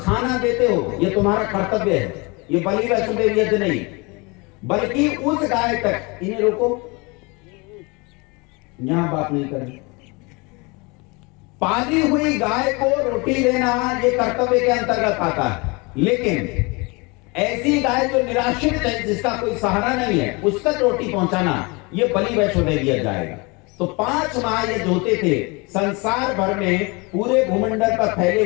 देते हो, यह तुम्हारा कर्तव्य है। ये बलि वैष्णोदेव यज्ञ नहीं, बल्कि उस गाय तक, इन्हें रोको, यहां बात नहीं करनी। पाली हुई गाय को रोटी देना ये कर्तव्य के अंतर्गत आता है, लेकिन ऐसी गाय जो निराश्रित है, जिसका कोई सहारा नहीं है, उस तक रोटी पहुंचाना ये बलि वैश्व दे दिया जाएगा। तो 5 महायज्ञ होते थे संसार भर में, पूरे भूमंडल पर फैले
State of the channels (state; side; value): quieter; right; 27.8 dB